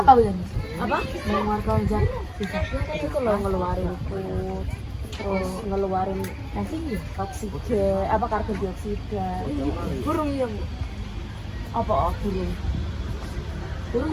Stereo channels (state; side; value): identical; both; correlation 1.00